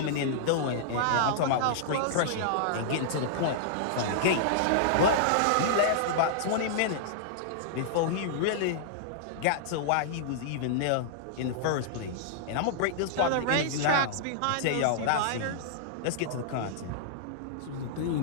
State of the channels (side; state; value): both; different; correlation -0.02